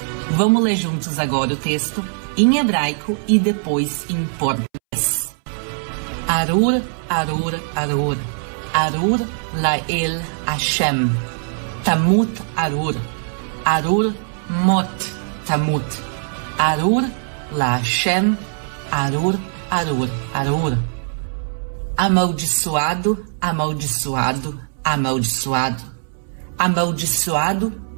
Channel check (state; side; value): silent; left; 65 dB below the other